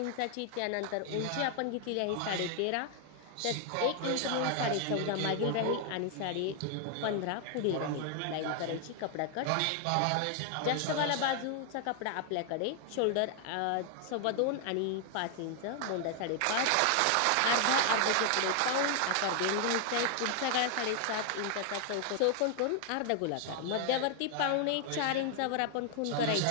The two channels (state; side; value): different; both; correlation 0.00